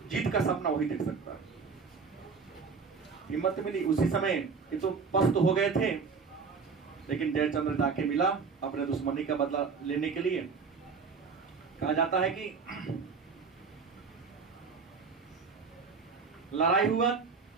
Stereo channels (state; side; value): quieter; left; 5.2 dB